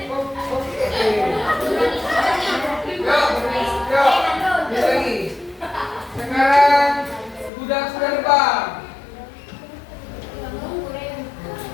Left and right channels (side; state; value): right; drops out; at 7.5 s